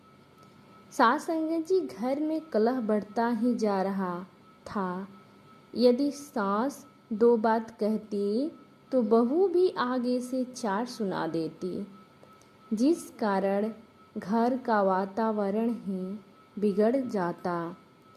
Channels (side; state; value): both; identical; correlation 1.00